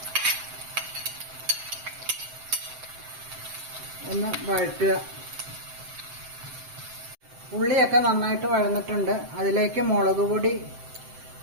ഒന്ന് വഴറ്റുക. ഉള്ളിയൊക്കെ നന്നായിട്ട് വഴന്നിട്ടുണ്ട്. അതിലേക്ക് മുളക് പൊടി,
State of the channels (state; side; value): late; left; 7.7 ms